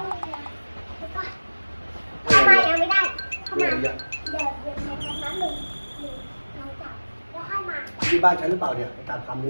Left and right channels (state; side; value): inverted; both; correlation -1.00